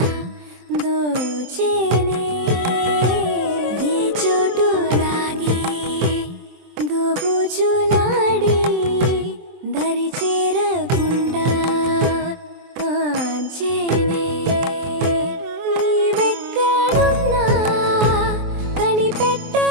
దోచేనే ఏ చోటు లాగే దోబుజులాడి దరి చేరకుండా కాంచేనే నీవెక్కడున్నా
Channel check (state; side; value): late; left; 23 ms